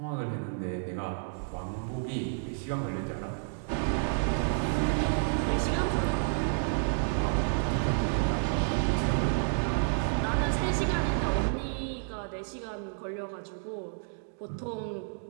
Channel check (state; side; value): silent; left; digital silence